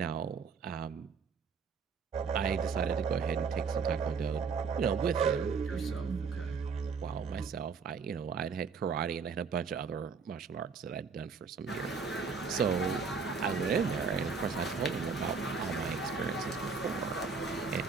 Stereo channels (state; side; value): quieter; left; 5.4 dB